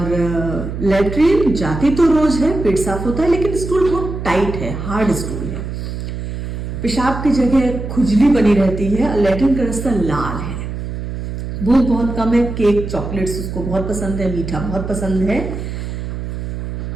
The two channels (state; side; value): noise; right; hum, 6 dB below the sound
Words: लैट्रिन जाती तो रोज है, पेट साफ होता है, लेकिन स्टूल बहुत टाइट है, हार्ड स्टूल है। पेशाब की जगह खुजली बनी रहती है, लैट्रिन का रास्ता लाल है। भूख बहुत कम है। केक, चॉकलेट्स उसको बहुत पसंद है, मीठा बहुत पसंद है।